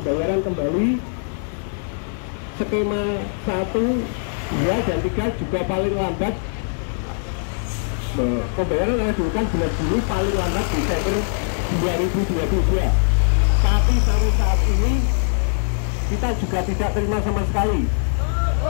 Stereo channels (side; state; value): right; silent; digital silence